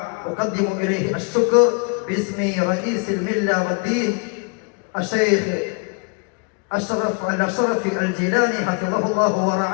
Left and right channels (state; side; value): quieter; right; 35.3 dB